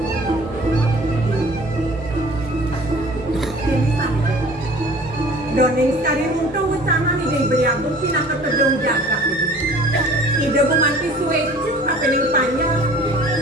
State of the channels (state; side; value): normal; both; correlation 0.48